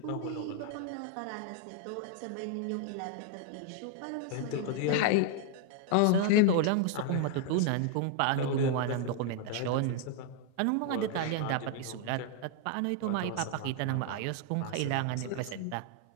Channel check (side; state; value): both; different; correlation 0.00